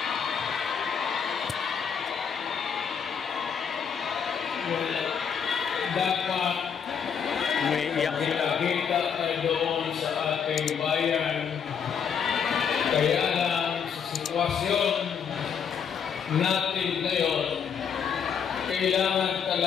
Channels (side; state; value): right; quieter; 7.2 dB